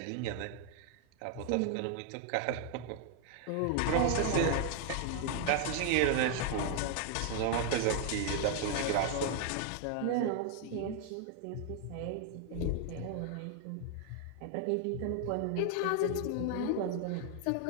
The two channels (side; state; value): both; different; correlation 0.00